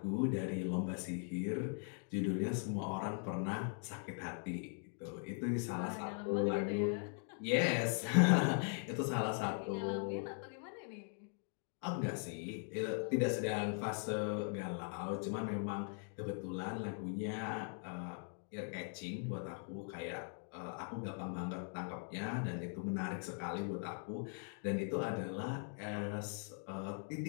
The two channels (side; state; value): right; silent; 51 dB below the other